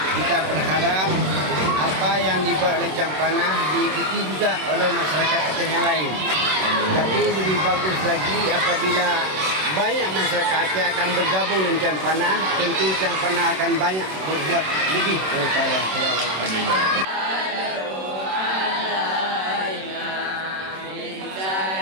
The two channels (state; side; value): late; left; 26 ms